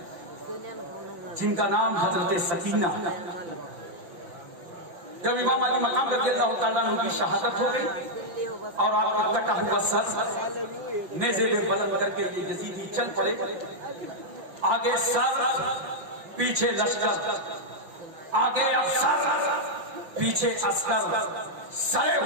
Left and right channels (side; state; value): left; late; 5.8 ms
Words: जिनका नाम हजरत सकीना। जब इमाम अली मकाम रज़ियल्लाहु ताला अन्हु की शहादत हो गई और आपका कटा हुआ सर नेज़े में बुलंद करके ये यजीदी चल पड़े, आगे सर पीछे लश्कर, आगे अफसर पीछे अस्कर, सरे